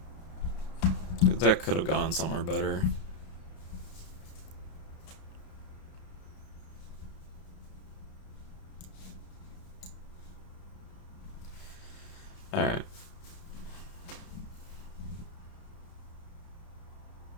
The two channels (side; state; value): right; late; 32 ms